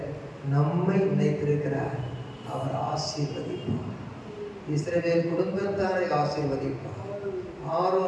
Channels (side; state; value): both; identical; correlation 1.00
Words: நம்மை நினைத்திருக்கிறார், அவர் ஆசீர்வதிப்பார். இஸ்ரவேல் குடும்பத்தாரை ஆசீர்வதிப்பார்,